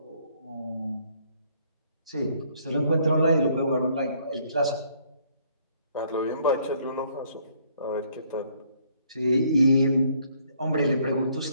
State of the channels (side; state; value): both; inverted; correlation -0.65